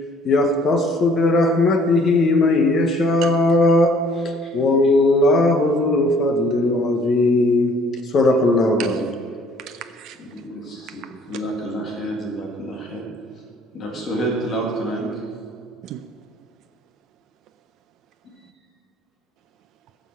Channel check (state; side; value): normal; both; correlation 0.58